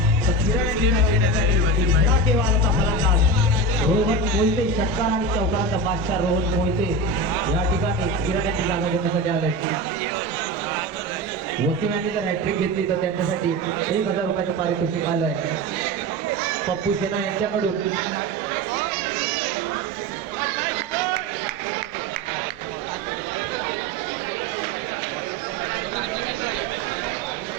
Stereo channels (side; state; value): both; normal; correlation 0.23